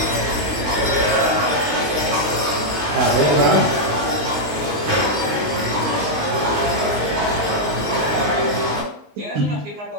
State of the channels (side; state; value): left; late; 20 ms